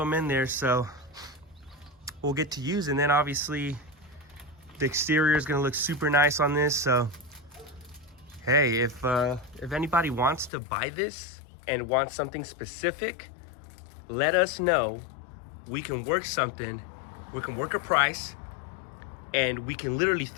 in there, so we'll get to use. And then obviously the exterior is gonna look super nice on this. So hey, if anybody wants to buy this and wants something specific, let us know. We can work something, we can work a price, and we can literally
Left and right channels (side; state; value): right; drops out; at 10.5 s